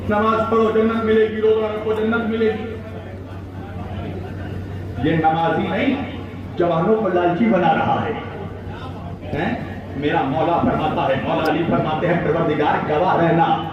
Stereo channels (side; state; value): both; identical; correlation 1.00